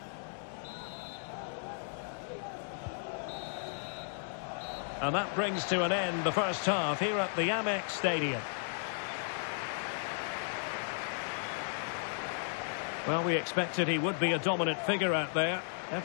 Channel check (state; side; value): silent; right; 55 dB below the other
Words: And that brings to an end the first half here at the Amex Stadium. Well, we expected he would be a dominant figure out there.